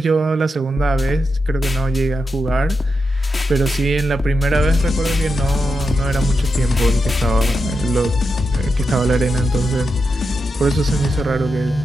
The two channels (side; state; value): both; normal; correlation 0.87